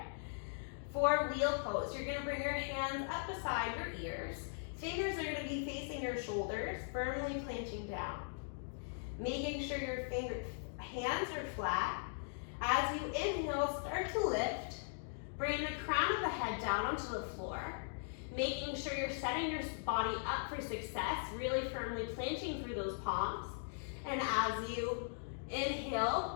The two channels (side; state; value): right; silent; digital silence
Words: For wheel pose, you're going to bring your hands up beside your ears. Fingers are going to be facing your shoulders, firmly planting down. Making sure your hands are flat. As you inhale, start to lift. Bring the crown of the head down onto the floor. Making sure you're setting your body up for success, really firmly planting through those palms. And as you